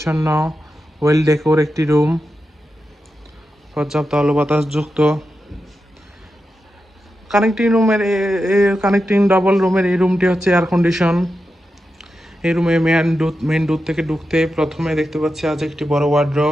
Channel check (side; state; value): both; normal; correlation 0.89